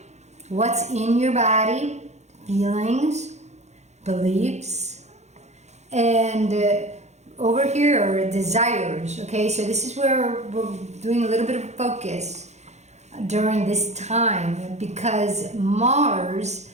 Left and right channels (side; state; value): left; late; 0.33 ms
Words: what's in your body, feelings, beliefs, and over here are desires. Okay, so this is where we're doing a little bit of focus during this time, because Mars